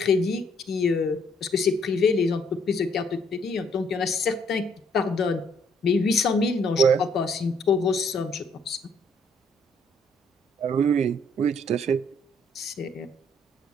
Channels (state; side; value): normal; both; correlation 0.66